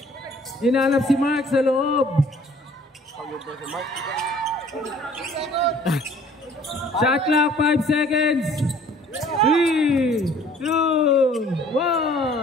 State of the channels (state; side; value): normal; both; correlation 0.55